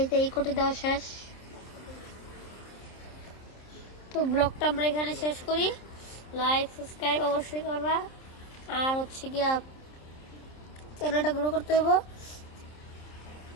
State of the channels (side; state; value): right; late; 27 ms